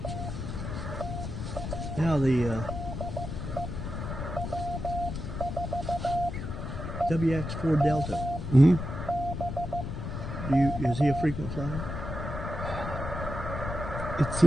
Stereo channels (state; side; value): noise; left; rumble, 5 dB below the sound